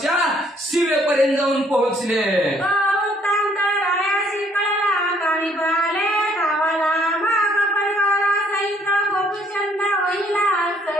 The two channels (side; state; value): both; normal; correlation 0.65